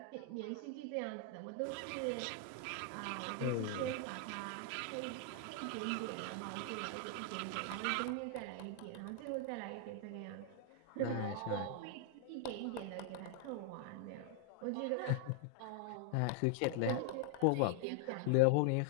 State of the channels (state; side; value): different; both; correlation 0.00